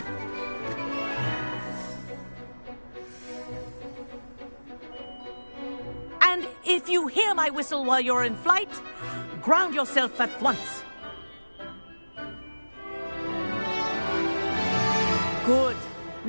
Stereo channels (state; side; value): inverted; both; correlation -1.00